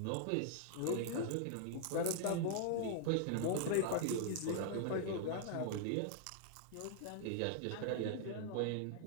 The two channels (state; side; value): different; both; correlation 0.00